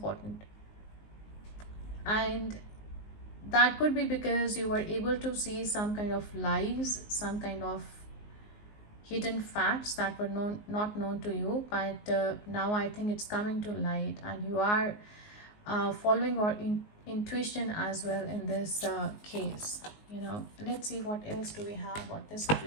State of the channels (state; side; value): late; right; 19 ms